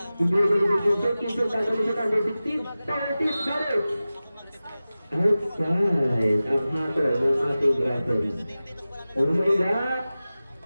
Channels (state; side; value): inverted; both; correlation -0.96